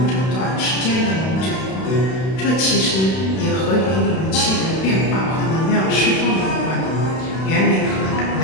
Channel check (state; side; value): late; right; 32 ms